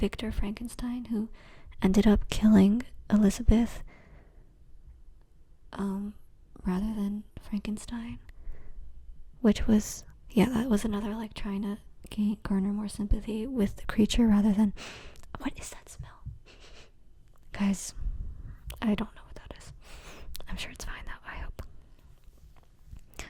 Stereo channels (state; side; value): identical; both; correlation 1.00